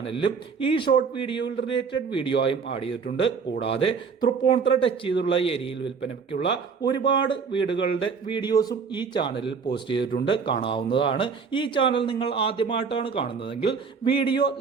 ഈ ഷോർട്ട് വീഡിയോയിൽ റിലേറ്റഡ് വീഡിയോ ആയും ആഡ് ചെയ്തിട്ടുണ്ട്. കൂടാതെ തൃപ്പൂണിത്തുറ ടച്ച് ചെയ്തുള്ള ഏരിയയിൽ വിൽപ്പനയ്ക്കുള്ള ഒരുപാട് വീടുകളുടെ വീഡിയോസും ഈ ചാനലിൽ പോസ്റ്റ് ചെയ്തിട്ടുണ്ട്, കാണാവുന്നതാണ്. ഈ ചാനൽ നിങ്ങൾ ആദ്യമായിട്ടാണ് കാണുന്നതെങ്കിൽ വീഡിയോ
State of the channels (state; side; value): quieter; left; 5.6 dB